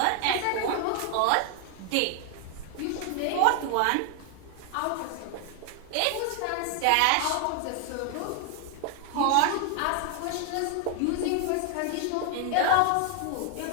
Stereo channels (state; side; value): different; both; correlation 0.00